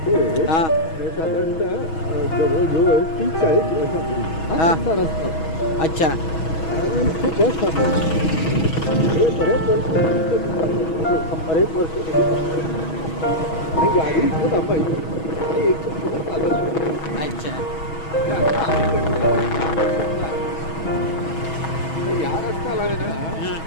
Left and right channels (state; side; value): late; right; 6.2 ms